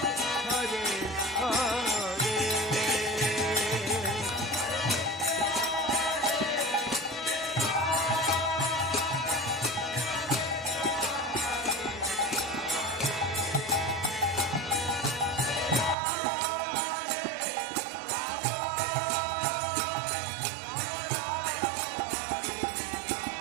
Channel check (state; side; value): drops out; left; at 16.0 s